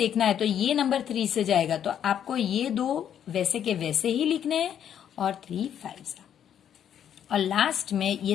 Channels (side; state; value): right; quieter; 9.4 dB